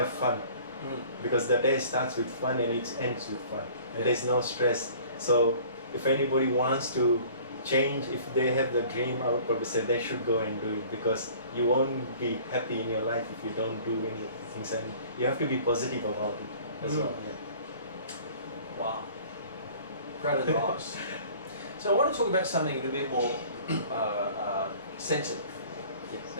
fun. Because the day starts with fun and it ends with fun. And there's no stress. So if anybody wants to change, if they have the dream, I would probably say they should go and do it, because you won't be happy in your life if you don't do any of the things. And you have to be positive about it as well. Yeah. Wow, great advice. So I want to talk about something a little bit more sensitive. Yes.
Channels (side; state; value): both; inverted; correlation -0.49